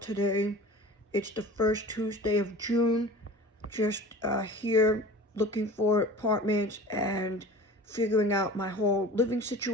It's the first Tuesday of June. Just here looking for apartments and figuring out my whole living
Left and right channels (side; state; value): both; normal; correlation 0.40